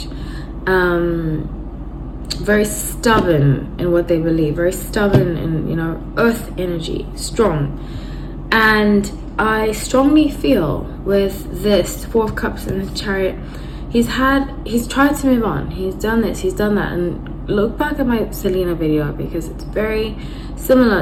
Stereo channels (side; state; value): both; identical; correlation 1.00